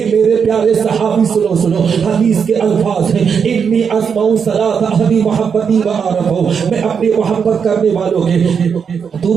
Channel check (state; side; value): quieter; left; 6.6 dB